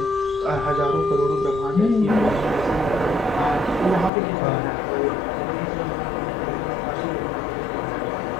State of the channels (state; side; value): drops out; right; at 4.1 s